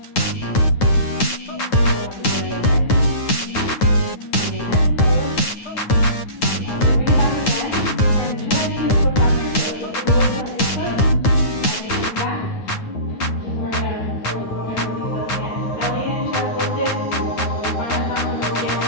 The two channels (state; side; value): late; right; 9.3 ms